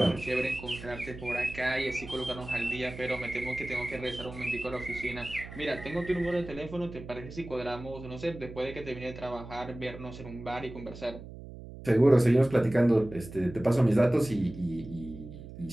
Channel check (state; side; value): noise; right; hum, 13 dB below the sound